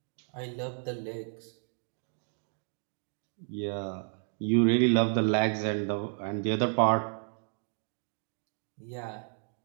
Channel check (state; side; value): silent; left; 57 dB below the other